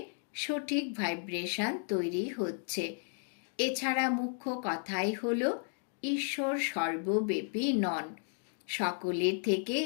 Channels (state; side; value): silent; right; 55 dB below the other